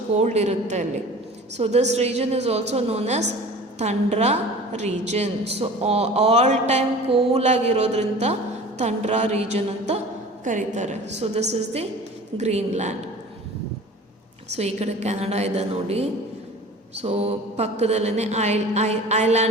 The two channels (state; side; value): normal; both; correlation 0.41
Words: ಕೋಲ್ಡ್ ಇರುತ್ತೆ ಅಲ್ಲಿ. So this region is also known as tundra region. So all time ಕೂಲಾಗಿರೋದ್ರಿಂದ ಥಂಡ್ರಾ ರೀಜನ್ ಅಂತ ಕರೀತಾರೆ. So this is the Greenland. So ಈ ಕಡೆ ಕೆನಡಾ ಇದೆ ನೋಡಿ. ಸೊ ಪಕ್ಕದಲ್ಲೇ